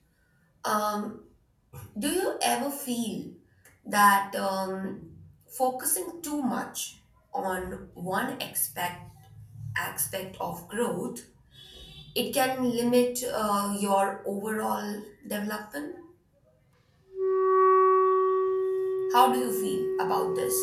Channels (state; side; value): identical; both; correlation 1.00